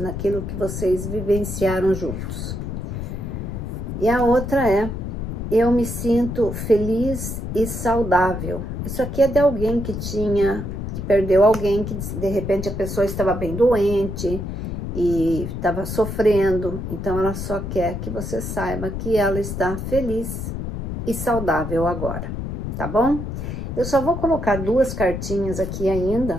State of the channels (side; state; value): left; noise; rumble, 5 dB below the sound